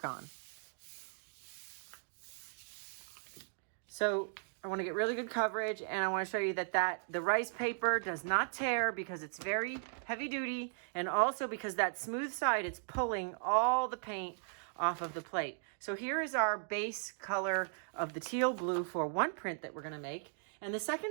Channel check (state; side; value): silent; left; digital silence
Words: on. So I want to get really good coverage, and I want to show you that the rice paper does not tear because it's very heavy duty, and also because that smooth side, it's pulling all the paint off of the plate. So here is our base color of the teal blue for one print that we're going to make, and the